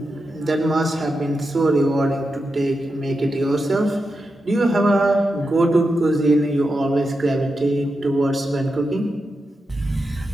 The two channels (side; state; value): both; normal; correlation 0.88